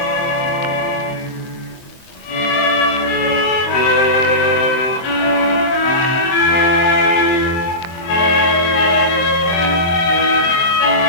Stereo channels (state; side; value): late; right; 23 ms